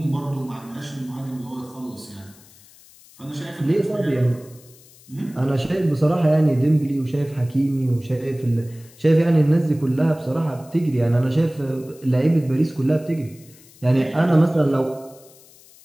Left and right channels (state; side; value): noise; left; hiss, 25 dB below the sound